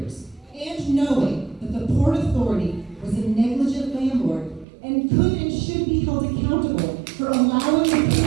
and knowing that the Port Authority was a negligent landlord and could and should be held accountable for allowing the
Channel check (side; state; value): left; drops out; at 4.7 s